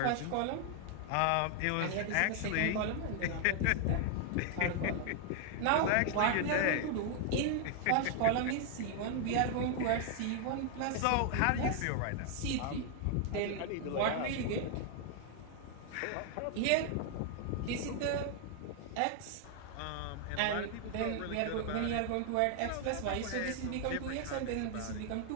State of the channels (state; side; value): different; both; correlation 0.00